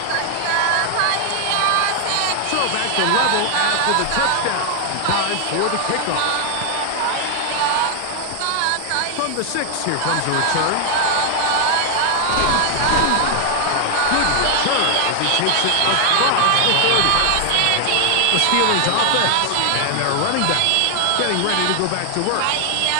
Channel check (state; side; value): different; both; correlation 0.00